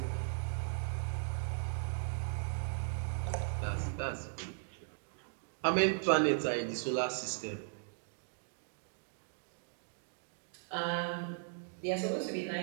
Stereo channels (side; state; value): left; silent; digital silence